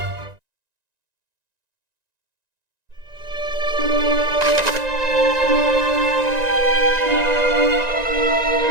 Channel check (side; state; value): left; late; 1.9 ms